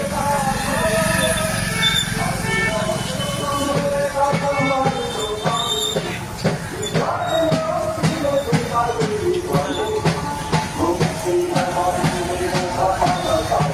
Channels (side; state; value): both; identical; correlation 1.00